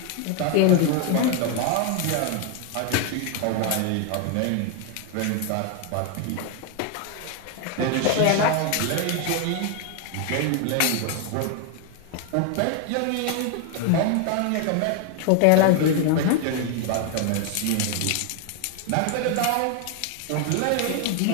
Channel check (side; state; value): both; different; correlation 0.01